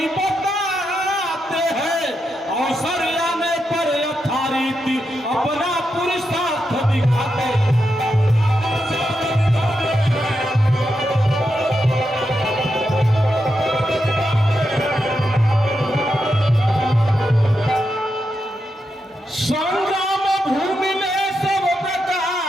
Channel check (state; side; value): normal; both; correlation 0.85